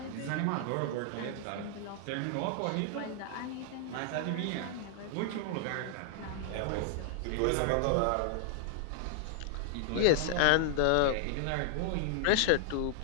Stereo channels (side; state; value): both; different; correlation -0.01